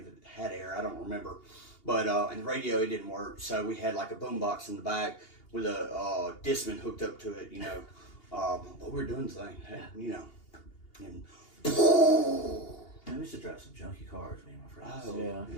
it had air, I don't remember. But and the radio, it didn't work. So we had like a boombox in the back with a Discman hooked up to it, you know. But we were doing the thing, you know. And Man, we used to drive some junky cars, me and my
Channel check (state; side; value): late; right; 2.8 ms